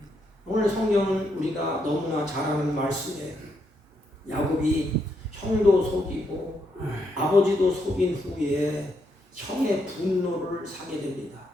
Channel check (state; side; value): normal; both; correlation 0.78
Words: 오늘 성경은 우리가 너무나 잘 아는 말씀에 야곱이 형도 속이고 아버지도 속인 후에 형의 분노를 사게 됩니다.